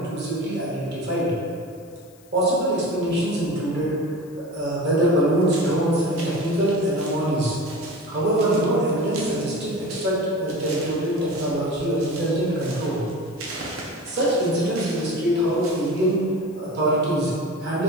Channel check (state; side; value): noise; left; hiss, 28 dB below the sound